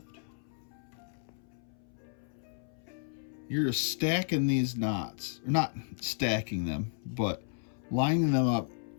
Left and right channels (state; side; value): silent; right; 56 dB below the other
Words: You're just stacking these knots, or not stacking them, but lining them up